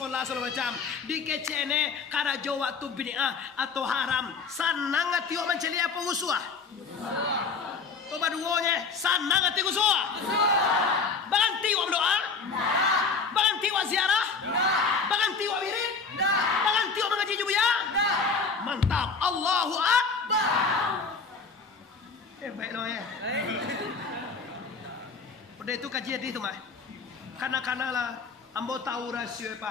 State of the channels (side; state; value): right; quieter; 4.8 dB